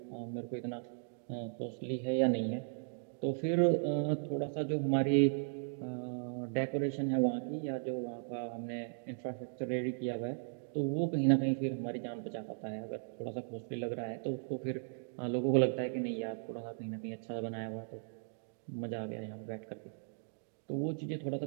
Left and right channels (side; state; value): left; silent; digital silence